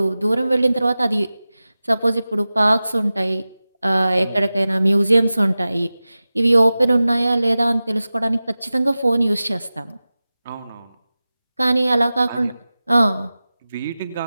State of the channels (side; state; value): both; inverted; correlation -0.96